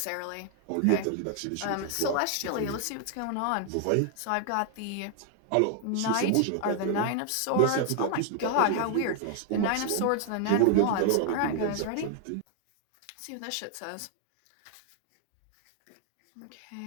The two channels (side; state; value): both; different; correlation 0.00